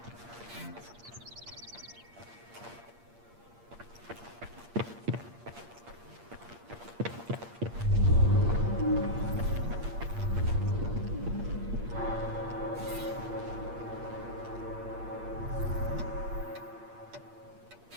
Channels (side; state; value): left; late; 8.6 ms